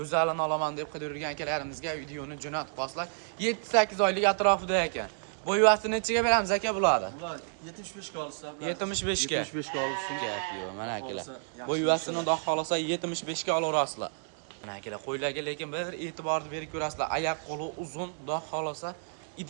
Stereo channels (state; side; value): silent; left; digital silence